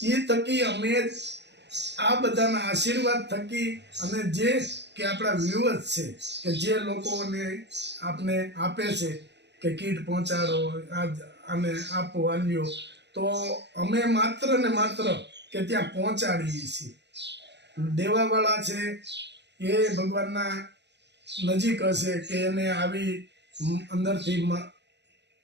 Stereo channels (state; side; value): late; left; 0.50 ms